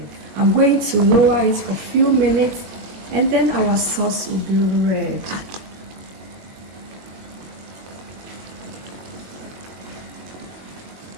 I'm going to lower it for a few minutes and then our sauce will be ready.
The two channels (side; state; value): left; late; 22 ms